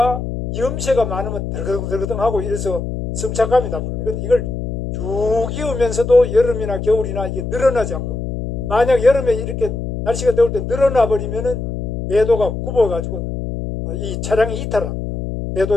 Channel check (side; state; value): left; noise; hum, 4 dB below the sound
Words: 염새가 많으면 덜그덩덜그덩하고 이래서 승차감이 나쁩니다. 근데 이걸 쭉 이으면서도 여름이나 겨울이나 이게 늘어나지 않고, 만약 여름에 이렇게 날씨가 더울 때 늘어나 버리면은 궤도가 굽어가지고 이 차량이 이탈합니다.